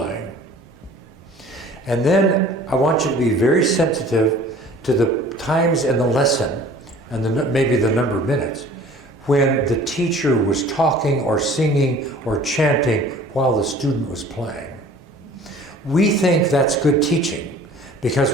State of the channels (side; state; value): both; normal; correlation 0.48